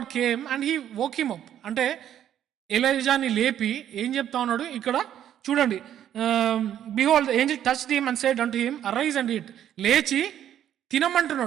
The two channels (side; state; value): left; quieter; 10.6 dB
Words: came and he woke him up. అంటే ఎలైజాని లేపి ఏం చెప్తా ఉన్నాడు ఇక్కడ చూడండి. Behold the Angel touched him and said unto him, arise and eat. లేచి